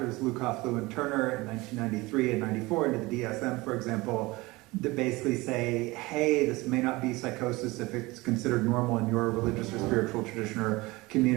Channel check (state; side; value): quieter; left; 21.8 dB